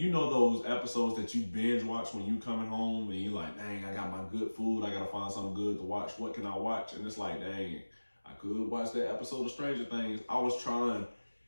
you know those episodes that you binge watch when you coming home and you're like, dang, I got my good food, I gotta find something good to watch, what can I watch? And it's like, dang, I could watch that episode of Stranger Things. I was trying,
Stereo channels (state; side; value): inverted; both; correlation -1.00